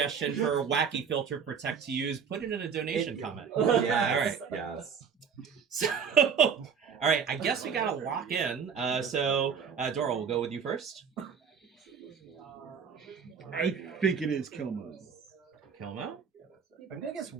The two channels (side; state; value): left; quieter; 6.8 dB